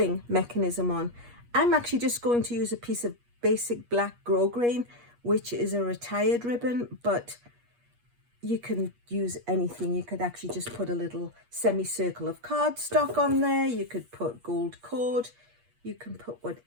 mechanism on. I'm actually just going to use a piece of basic black grosgrain, which is a retired ribbon, but you can use anything. You could actually just put a little semicircle of cardstock on there. You could put gold cord. You can put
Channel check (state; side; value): late; left; 8.4 ms